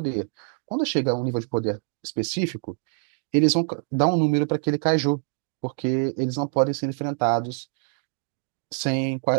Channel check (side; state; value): left; silent; 56 dB below the other